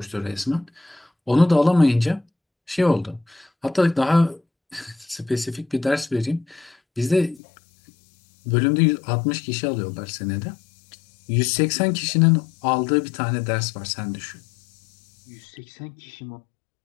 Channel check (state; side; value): drops out; right; at 7.4 s